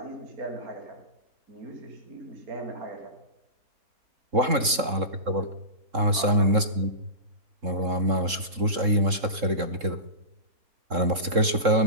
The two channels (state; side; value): late; left; 3.7 ms